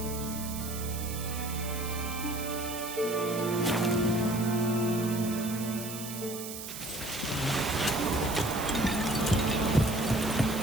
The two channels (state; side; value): noise; right; hiss, 9 dB below the sound